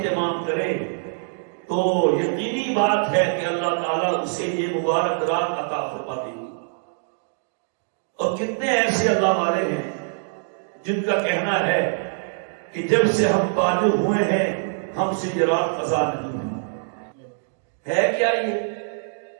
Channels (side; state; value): left; silent; digital silence